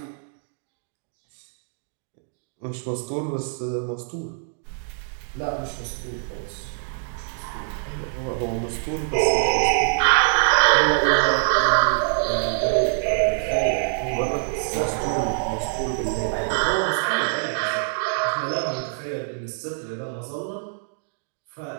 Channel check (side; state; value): left; silent; digital silence